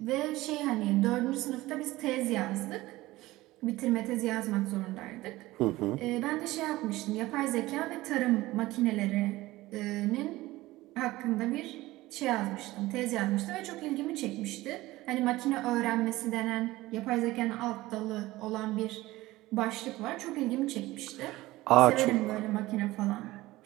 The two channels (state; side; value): quieter; left; 18.2 dB